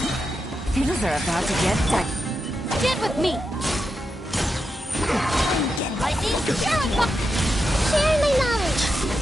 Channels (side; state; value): both; normal; correlation 0.87